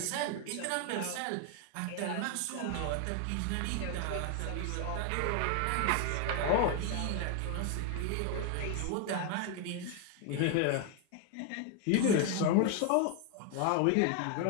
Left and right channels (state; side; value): different; both; correlation 0.01